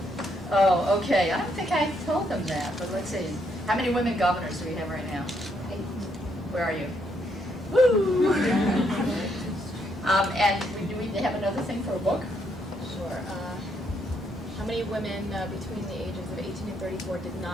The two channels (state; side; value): normal; both; correlation 0.74